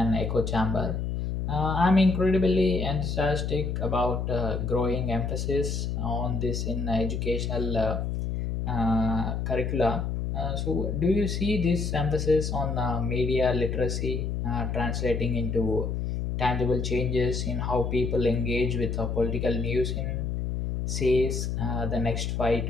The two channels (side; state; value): left; noise; hum, 2 dB below the sound